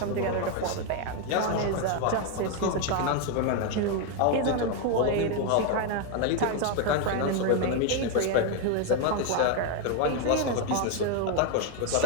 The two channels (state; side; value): different; both; correlation 0.01